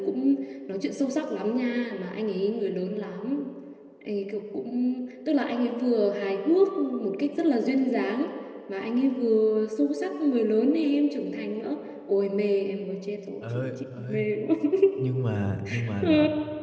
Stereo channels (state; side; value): identical; both; correlation 1.00